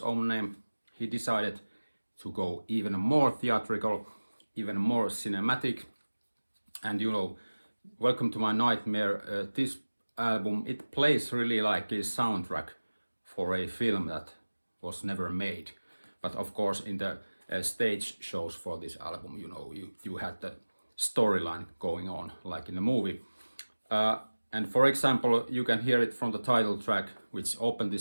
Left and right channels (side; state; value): both; inverted; correlation -1.00